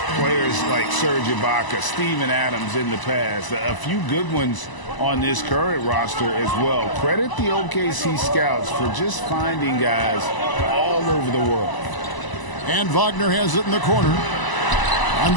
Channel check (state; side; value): late; right; 1.0 ms